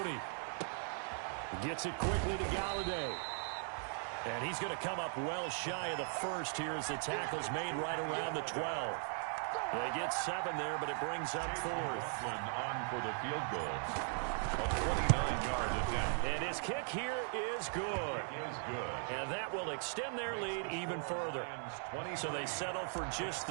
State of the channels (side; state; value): left; silent; 52 dB below the other